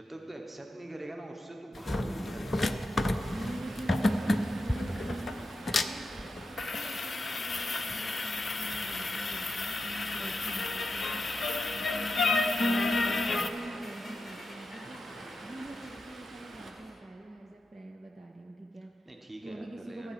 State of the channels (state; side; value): normal; both; correlation 0.89